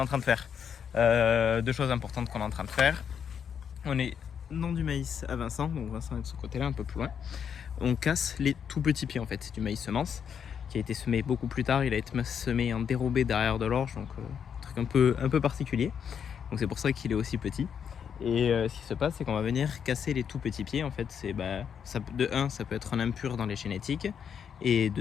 train de faire? Deux choses importantes qu'on est en train de faire. On est dans du maïs à Vincent, donc Vincent est de ce côté-là, un peu plus loin. On casse les tout petits pieds en fait, c'est du maïs semence qui a été semé beaucoup plus tard. Il a été semé en dérobé derrière de l'orge, donc un truc un peu particulier. Donc c'est pour ça qu'il est aussi petit. Et ce qui se passe, c'est qu'on va venir casser les tout petits pieds. En fait, c'est de 1, ça peut être un impur dans les génétiques, et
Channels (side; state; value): right; quieter; 7.7 dB